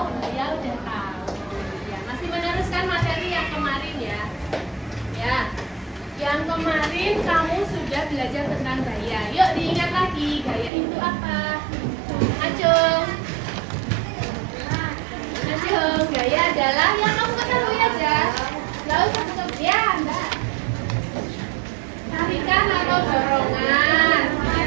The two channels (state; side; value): drops out; left; at 10.7 s